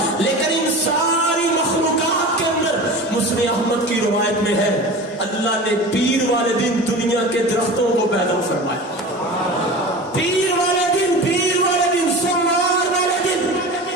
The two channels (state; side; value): normal; both; correlation 0.33